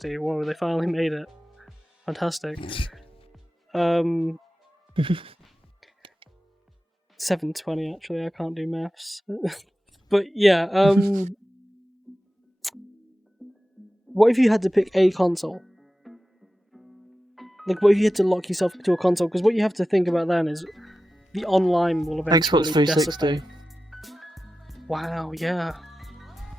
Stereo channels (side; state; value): both; normal; correlation 0.94